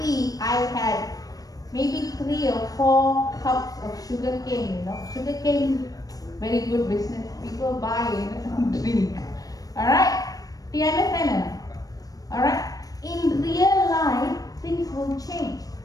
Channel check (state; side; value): late; right; 0.18 ms